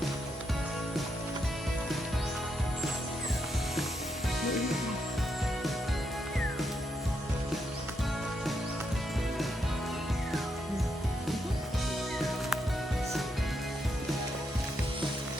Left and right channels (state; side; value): normal; both; correlation 0.79